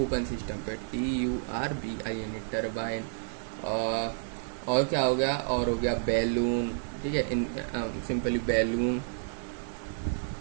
ओपन सिस्टम पे। TURBIN, turbine. और क्या हो गया? और हो गया बैलून, ठीक है, सिंपली बैलून।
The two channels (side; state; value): left; silent; 58 dB below the other